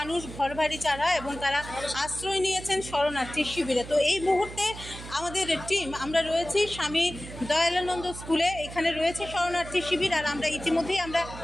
ঘর বাড়ি ছাড়া এবং তারা আশ্রয় নিয়েছেন শরণার্থী শিবিরে। তো এই মুহূর্তে আমাদের টিম আমরা রয়েছি স্বামী দয়ালানন্দ স্কুলে, এখানে রয়েছে শরণার্থী শিবির। আর আমরা ইতিমধ্যেই আমরা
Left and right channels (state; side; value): noise; right; hum, 13 dB below the sound